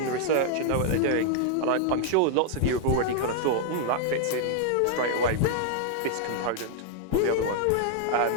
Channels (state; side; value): different; both; correlation 0.00